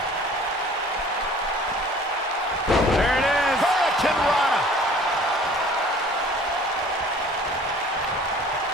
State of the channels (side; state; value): both; normal; correlation 0.50